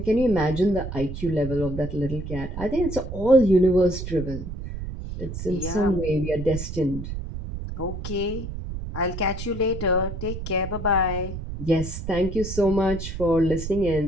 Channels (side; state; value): right; noise; rumble, 7 dB below the sound